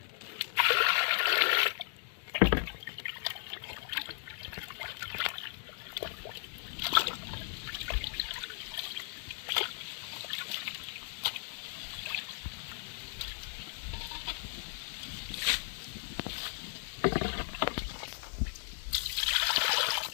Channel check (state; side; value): silent; right; digital silence